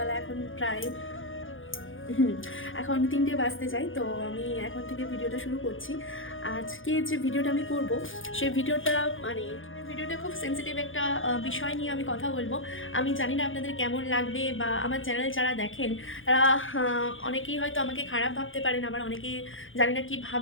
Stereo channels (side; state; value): right; late; 0.58 ms